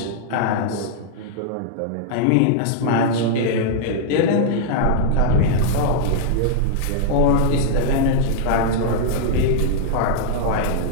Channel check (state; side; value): different; both; correlation -0.01